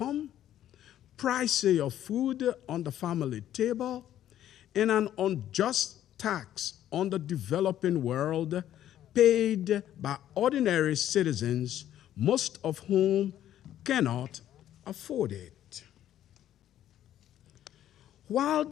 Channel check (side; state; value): right; quieter; 11.7 dB